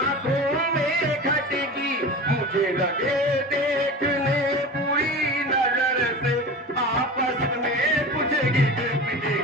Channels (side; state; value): both; normal; correlation 0.32